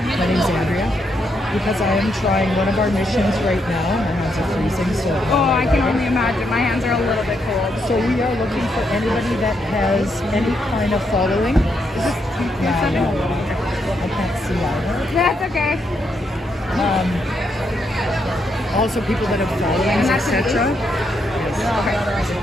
name's Andrea. Because I am trying one of our missions right now. My hands are freezing, so... Oh, I can only imagine. My hands are a little bit cold. So we are looking for anybody that has any kind of following. Is this... Yeah, no. I can't see either. That's okay. Also people that have followings, etc. Okay.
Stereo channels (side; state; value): both; normal; correlation 0.79